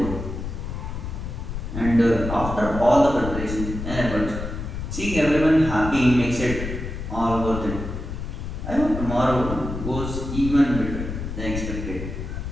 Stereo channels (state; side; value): noise; left; rumble, 6 dB below the sound